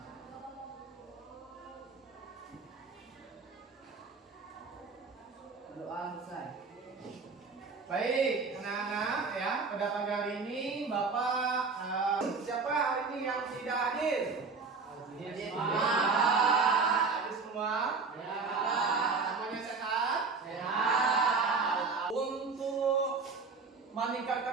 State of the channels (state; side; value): quieter; left; 4.6 dB